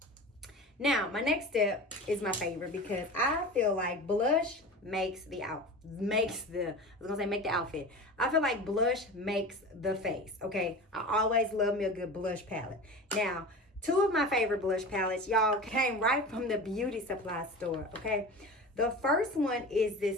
Now, my next step is my favorite because I feel like blush make the outfit. I feel like blush makes the face, okay? I always love me a good blush palette. Now, two of my favorite blush palettes, y'all, came right from the beauty supply store, okay? The first one is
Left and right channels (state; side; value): normal; both; correlation 0.32